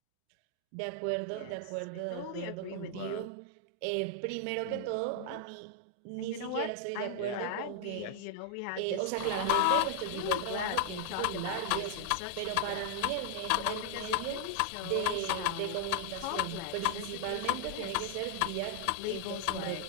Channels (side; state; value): both; different; correlation 0.00